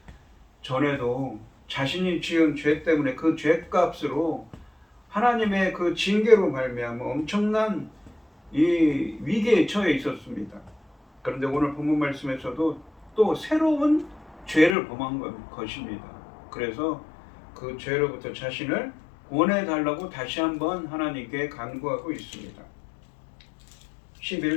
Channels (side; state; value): right; drops out; at 14.8 s